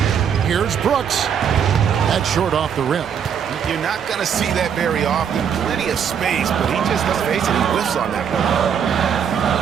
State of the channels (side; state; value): left; quieter; 7.8 dB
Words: Here's Brooks. That's short off the rim. You're not going to see that very often. Plenty of space, but he just, let's face it, he whiffs on that one.